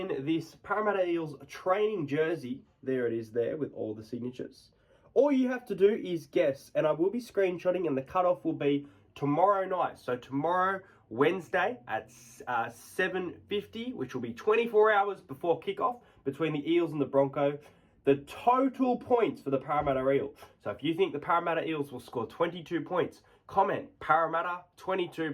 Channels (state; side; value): identical; both; correlation 1.00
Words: this Parramatta Eels training jersey, there it is there with all the signatures. All you have to do is guess, and I will be screenshotting, and the cutoff will be tomorrow night. So tomorrow, Wednesday at 7:50, which will be 24 hours before kickoff between the Eels and the Broncos, the total points for the Parramatta Eels. So if you think the Parramatta Eels will score 22 points, comment Parramatta 22